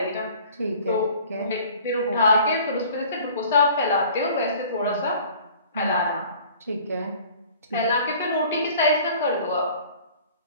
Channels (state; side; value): inverted; both; correlation -0.49